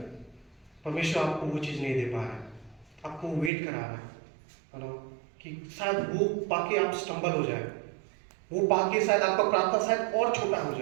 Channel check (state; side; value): drops out; left; at 3.5 s